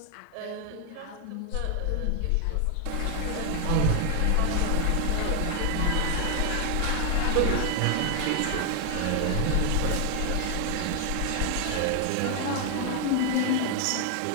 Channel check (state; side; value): different; both; correlation 0.00